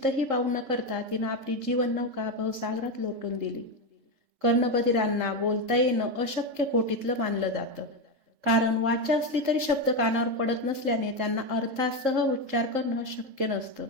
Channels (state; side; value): late; left; 3.8 ms